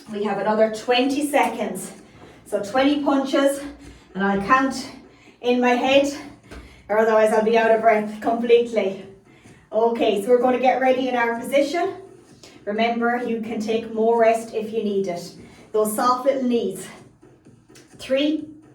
We have another 20 seconds. So 20 punches, and I'll count in my head, or otherwise I'll be out of breath completely. Okay, so we're going to get ready in our position. Remember, you can take more rest if you need it. Those soft little knees. 3,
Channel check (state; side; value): identical; both; correlation 1.00